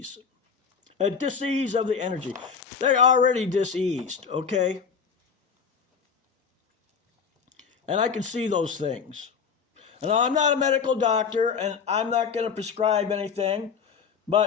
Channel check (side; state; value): right; quieter; 6.2 dB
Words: A dis-ease of the energy. They're already dis-eased, okay? And I can see those things. And I'm not a medical doctor, and I'm not going to prescribe anything,